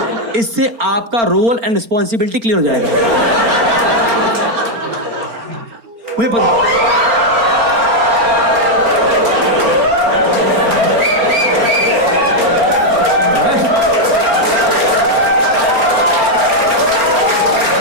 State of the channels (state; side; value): late; left; 4.4 ms